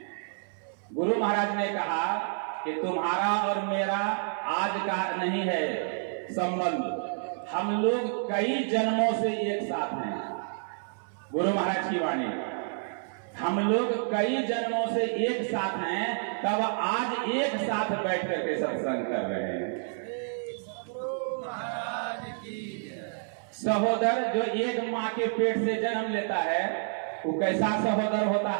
गुरु महाराज ने कहा कि तुम्हारा और मेरा आज का नहीं है संबंध, हम लोग कई जन्मों से एक साथ हैं। गुरु महाराज की वाणी, हम लोग कई जन्मों से एक साथ हैं, तब आज एक साथ बैठ करके सत्संग कर रहे हैं। सहोदर जो एक माँ के पेट से जन्म लेता है वो कैसा सहोदर होता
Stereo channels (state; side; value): silent; left; 58 dB below the other